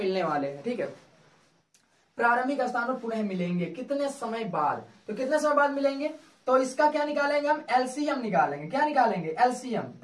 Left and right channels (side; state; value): both; identical; correlation 1.00